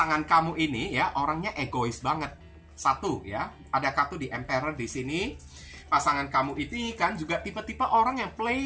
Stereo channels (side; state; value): both; identical; correlation 1.00